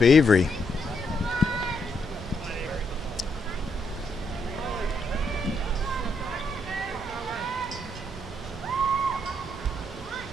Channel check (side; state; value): both; normal; correlation 0.77